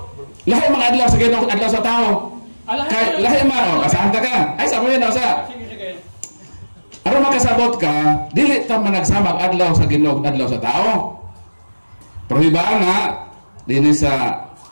Lahi mga adlaw sa Ginoo, adlaw sa tao. Kay lahi man, kasanta ka. Ay sa mo yun sa. Sige. Aron makasabot ka, dili ta man nagsamag adlaw sa Ginoo, adlaw sa tao. Prohibaan na dinhi sa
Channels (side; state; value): both; inverted; correlation -1.00